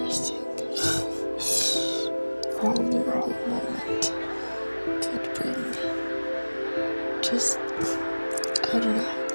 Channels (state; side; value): inverted; both; correlation -1.00